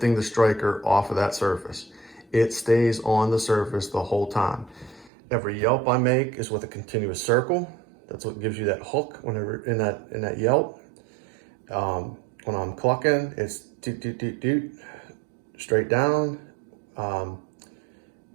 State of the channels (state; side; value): drops out; left; at 5.1 s